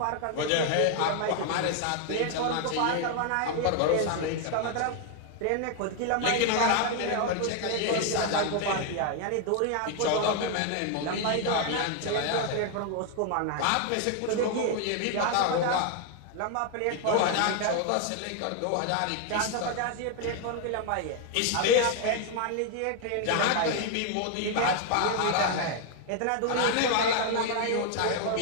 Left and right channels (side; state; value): both; different; correlation 0.00